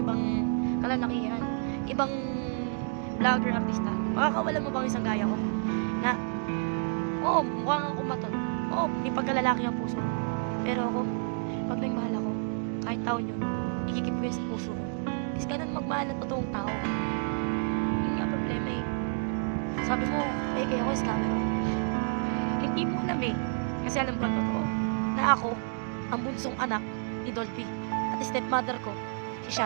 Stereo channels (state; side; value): silent; left; 58 dB below the other